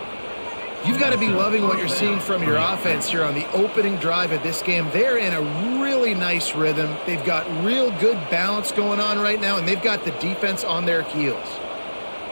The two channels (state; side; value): inverted; both; correlation -1.00